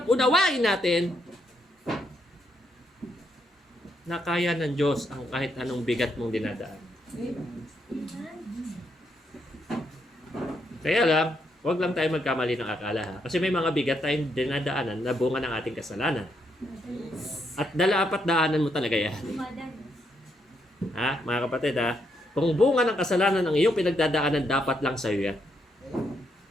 unawain natin na kaya ng Diyos ang kahit anong bigat mong dinadaan? Kaya lang, huwag lang tayo magkamali ng akala ha. Kasi may mga bigat tayong dinadaanan na bunga ng ating kasalanan. At dala-apat daanan mo talaga yan. Ha, mga kapatid ha? Kung bunga ng kasalanan ang iyong pinagdadaanan, dapat lang sa'yo yan.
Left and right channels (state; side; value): normal; both; correlation 0.77